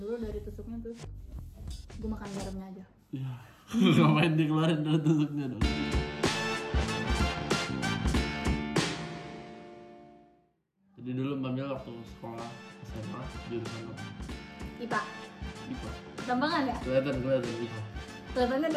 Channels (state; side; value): identical; both; correlation 1.00